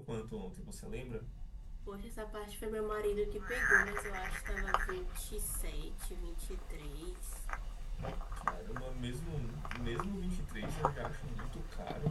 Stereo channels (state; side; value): identical; both; correlation 1.00